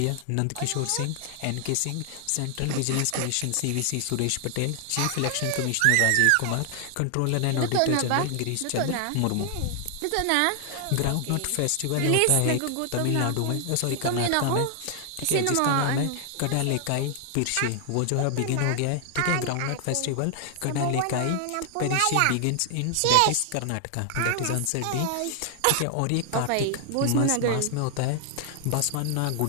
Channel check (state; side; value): different; both; correlation 0.00